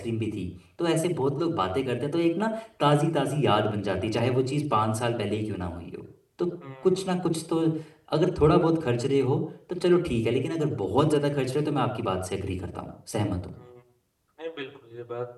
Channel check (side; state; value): both; identical; correlation 1.00